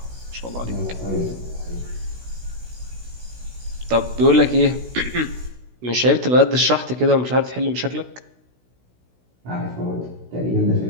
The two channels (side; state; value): left; late; 16 ms